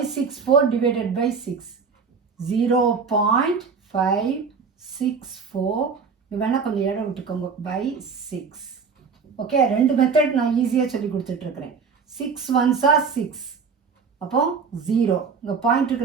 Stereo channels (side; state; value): left; quieter; 5.6 dB